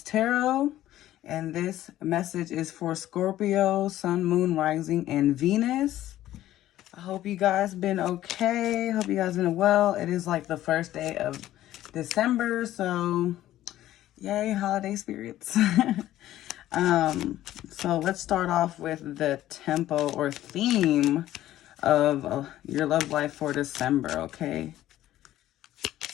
Tarot, and this message is for Scorpio, Sun, Moon, Rising, and Venus. I hope you guys been okay. Hope you guys been well. It is like the first day of December, so yay, holiday spirits. So let's start off with the tempo or theme of your love life for December, okay?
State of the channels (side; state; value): right; quieter; 13.8 dB